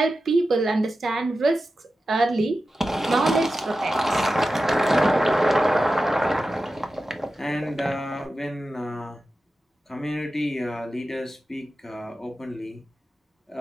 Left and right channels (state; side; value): normal; both; correlation 0.92